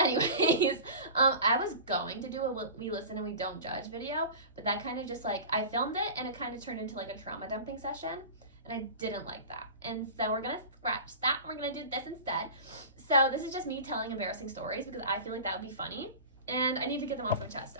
I was going to do a we listen and we don't judge video, but that kind of just I filmed it and it kind of turned into a trauma dumping session. And I didn't like that. And so we're going to scratch that. We're going to do this instead. So this is just me telling embarrassing stories because I feel like that would be funny. And I need to get them off my chest,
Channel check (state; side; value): inverted; both; correlation -0.34